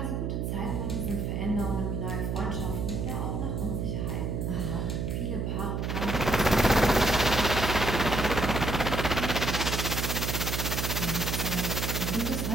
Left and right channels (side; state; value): right; noise; hum, 1 dB below the sound